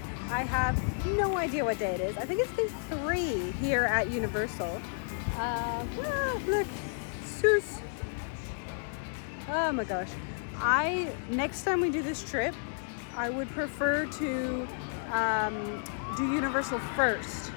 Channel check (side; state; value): right; silent; digital silence